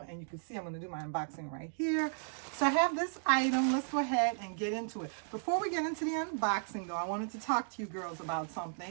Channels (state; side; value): silent; left; digital silence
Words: you can see I'm gonna do my unboxing right here. So I have this item. Let's go ahead and get into it. Before we get into the unboxing though, I wanted to talk to you girls about